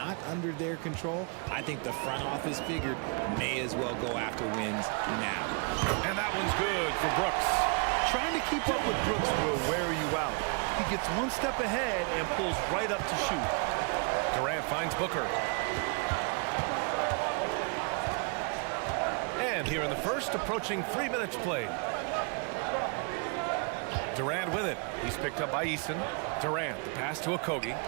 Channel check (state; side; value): quieter; left; 36.4 dB